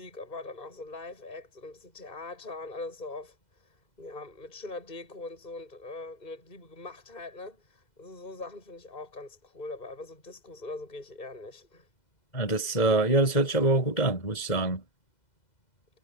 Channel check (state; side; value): late; right; 2.0 ms